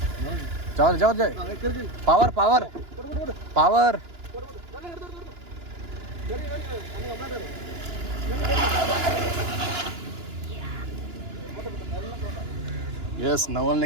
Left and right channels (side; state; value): left; late; 2.9 ms